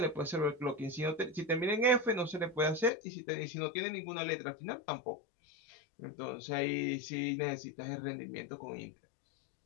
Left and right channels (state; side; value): drops out; right; at 2.9 s